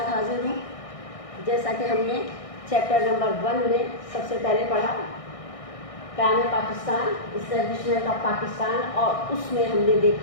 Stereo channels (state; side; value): late; right; 1.6 ms